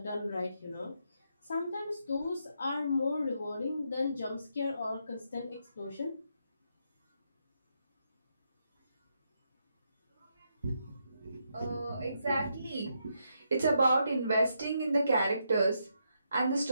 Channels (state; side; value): inverted; both; correlation -0.80